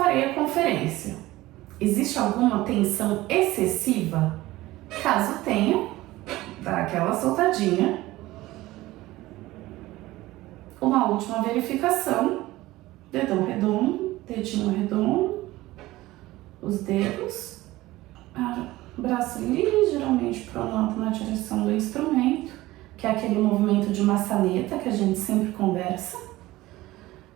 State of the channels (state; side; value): quieter; left; 17.8 dB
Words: a conferência. Existe alguma tensão excessiva? Caso tenha, dá aquela soltadinha. Uma última verificação. Dedão redondo, dedinho redondo, os dedos, braço ligeiramente pronto na direção do instrumento, que é aquele movimento de maçaneta que a gente sempre conversa.